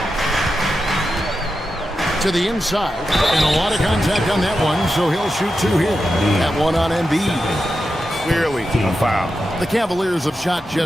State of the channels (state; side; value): normal; both; correlation 0.90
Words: To the inside, and a lot of contact on that one, so he'll shoot 2 here. That one on Embiid. Clearly a foul. The Cavaliers have shot